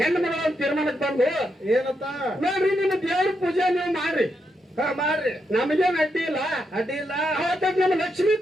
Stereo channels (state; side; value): normal; both; correlation 0.82